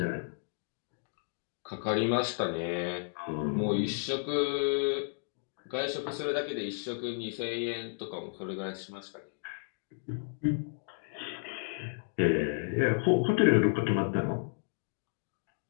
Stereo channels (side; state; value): right; silent; digital silence